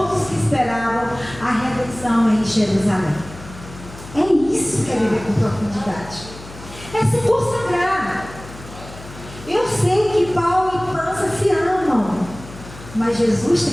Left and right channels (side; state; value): left; noise; hum, 16 dB below the sound